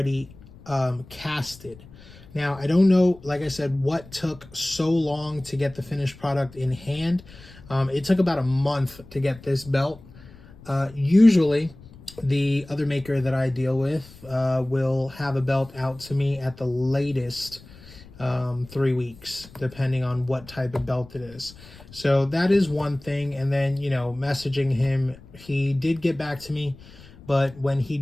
casted. Now, I don't know, like I said, what took so long to get the finished product in hand. It took about a month to get this belt. Usually, the other maker that I deal with will have a belt out to me at the latest 3 weeks, depending on what type of belt it is. So that is one thing. And then, you know, messaging him, he did get back to me. But when he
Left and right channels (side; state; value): left; noise; rumble, 21 dB below the sound